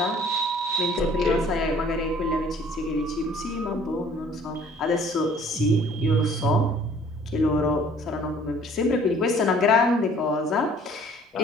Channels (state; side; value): normal; both; correlation 0.54